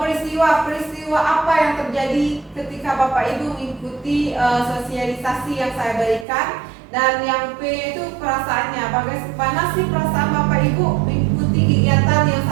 apa yang terjadi ketika Bapak Ibu mengikuti sosialisasi yang saya berikan, dan yang P itu perasaannya. Bagaimana sih perasaan Bapak Ibu mengikuti kegiatan yang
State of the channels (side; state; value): left; drops out; at 6.2 s